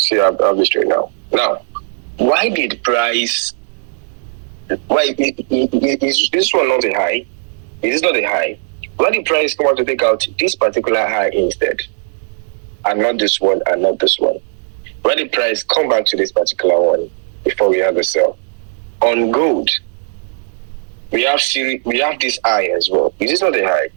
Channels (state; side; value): silent; left; digital silence